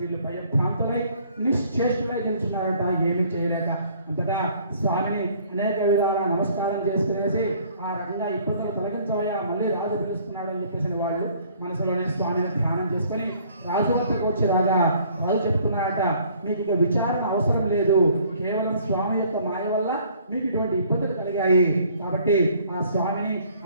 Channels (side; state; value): both; inverted; correlation -0.58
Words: వీళ్ళు భయభ్రాంతులై నిశ్చేష్టులై నిల్చున్నారట, ఏమీ చేయలేక. అంతటా స్వామిని అనేక విధాల నమస్కారం చేసుకునేసి ఆ రకంగా ఇబ్బందులు తొలగించవయ్యా, మళ్ళీ రాజు పిలుస్తున్నాడు అని చెప్పేసి వాళ్ళు మనసులోనే స్వామిని ధ్యానం చేసుకొని రాజు వద్దకు వచ్చి రాగా రాజు చెప్తున్నాడట, మీకు ఇక విచారణ అవసరం లేదు, కేవలం స్వామి యొక్క మాయ వల్ల మీకు ఇటువంటి ఇబ్బందులు కలిగాయి, కాబట్టి ఆ స్వామిని